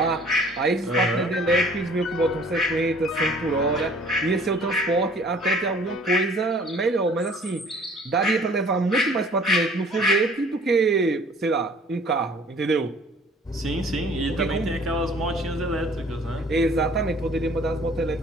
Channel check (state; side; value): normal; both; correlation 0.53